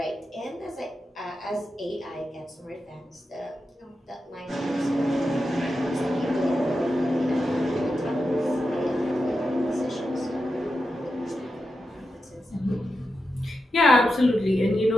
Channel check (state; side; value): normal; both; correlation 0.89